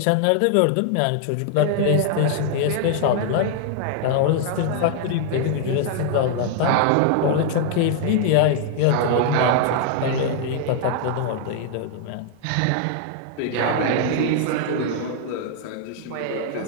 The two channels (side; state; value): both; different; correlation -0.01